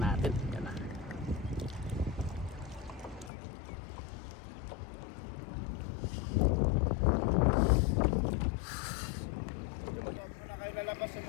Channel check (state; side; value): drops out; right; at 3.3 s